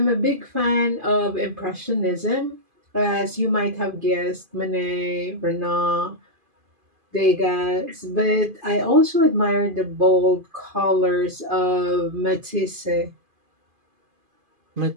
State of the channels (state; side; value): late; left; 2.5 ms